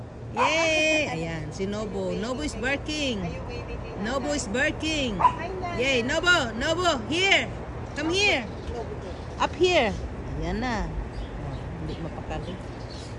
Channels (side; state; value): both; identical; correlation 1.00